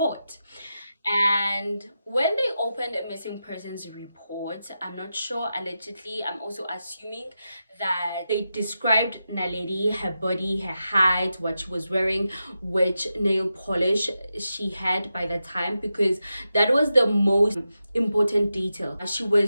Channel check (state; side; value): inverted; both; correlation -0.89